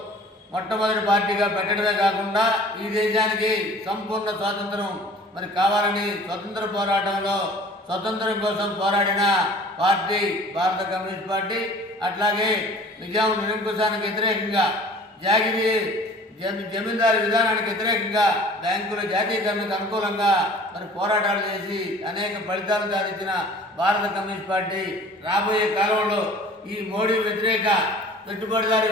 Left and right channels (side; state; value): both; normal; correlation 0.47